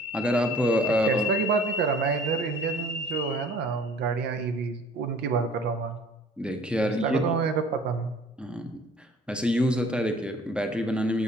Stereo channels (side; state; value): both; normal; correlation 0.51